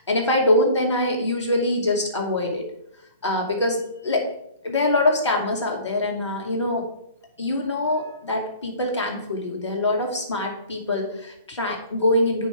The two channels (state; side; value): inverted; both; correlation -0.47